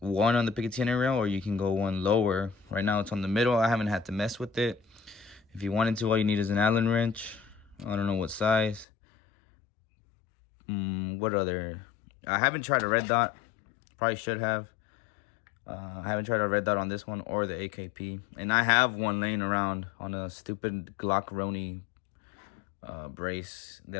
on the Picatinny rail, or you can go 1 lower. Right now it's on the middle. I haven't had to mess with it. If you wanted to, all you need is an Allen wrench. I don't know what size. What other? I haven't tried a red dot. Probably should have. I haven't tried a red dot on this one or the AKP. And I have one laying around on a stupid Glock Roni brace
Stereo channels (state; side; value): drops out; right; at 8.8 s